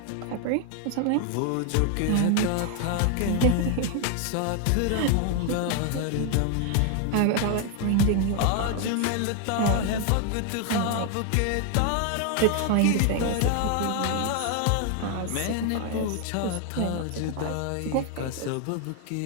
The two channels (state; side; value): different; both; correlation 0.01